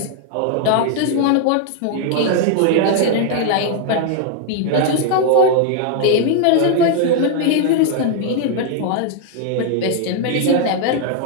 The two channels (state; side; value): different; both; correlation 0.00